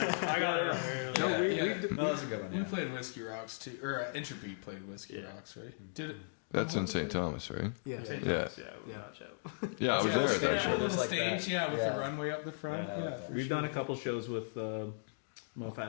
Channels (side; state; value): right; silent; digital silence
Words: I got it. Yeah, we- yeah. No, that's a good one. We Yeah. played Whiskey Rocks too, or Entropy played Whiskey Rocks, right? Did it? That's I'm in hoping St. they- Thomas, right? Yeah, Yeah. Yeah, we got Chatham. Yeah, I was Yeah, they there. got a cool little Just like stage, that. yeah, with the Yeah. runway up the front. Yeah, Yeah, like for We've sure. done a couple shows with